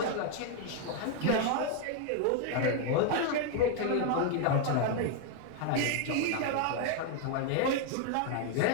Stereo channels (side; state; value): both; different; correlation 0.00